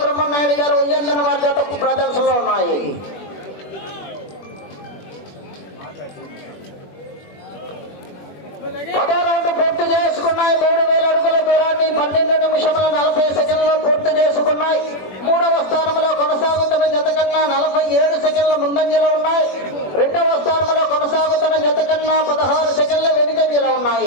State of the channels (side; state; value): right; late; 21 ms